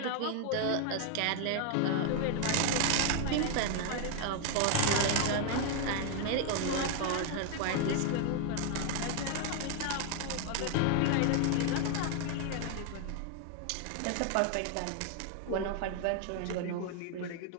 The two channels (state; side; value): different; both; correlation 0.00